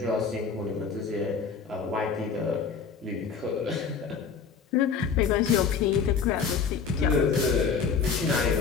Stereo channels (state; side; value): quieter; right; 5.9 dB